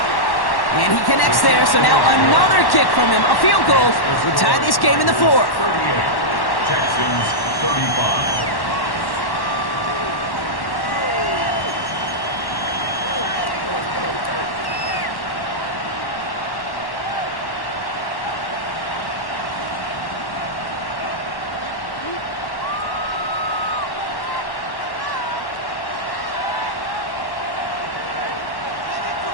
And he connects there, so now another kick from him. A field goal will tie this game in the 4th. 38. Texans 35.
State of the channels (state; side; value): late; right; 1.1 ms